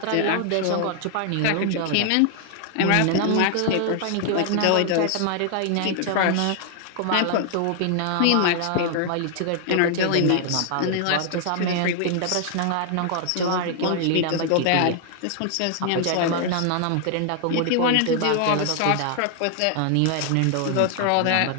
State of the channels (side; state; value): both; different; correlation 0.00